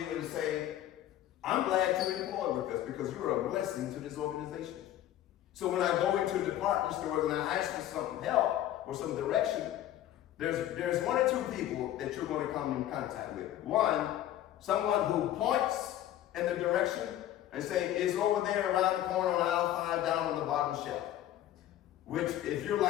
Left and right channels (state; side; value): quieter; right; 12.7 dB